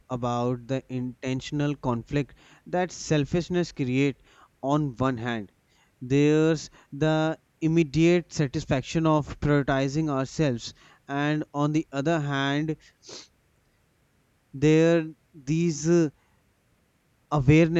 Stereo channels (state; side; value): identical; both; correlation 1.00